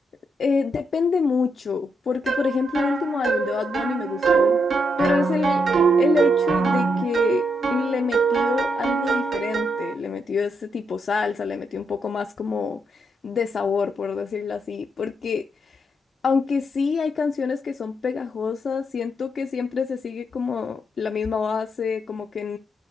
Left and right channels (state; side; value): normal; both; correlation 0.79